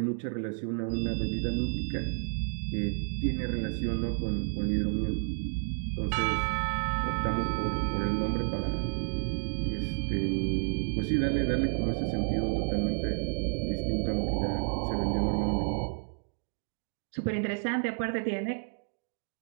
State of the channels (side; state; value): left; silent; 57 dB below the other